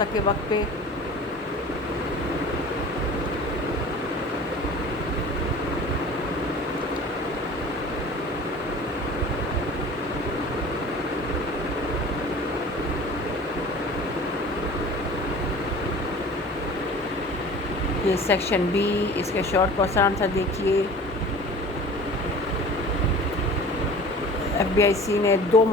वक्त पे। ये सेक्शन B, इसके शॉर्ट क्वेश्चन आंसर देखिए। FBIC ने 2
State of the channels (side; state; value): both; normal; correlation 0.42